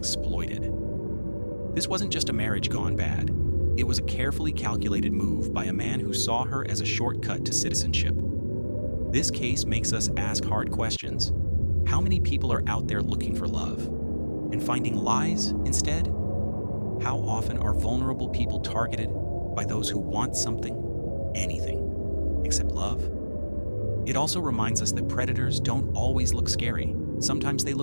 This wasn't just a marriage gone bad. It was a carefully calculated move by a man who saw her as a shortcut to citizenship. This case makes us ask hard questions. How many people are out there looking for love and finding lies instead? How often are vulnerable people targeted by those who want something, anything, except love? It also reminds us that predators don't always look scary. Sometimes they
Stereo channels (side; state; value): both; inverted; correlation -1.00